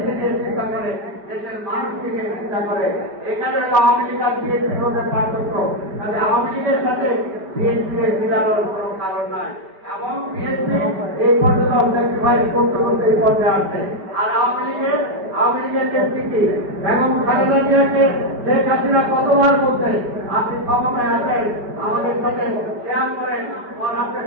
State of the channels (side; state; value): left; late; 5.1 ms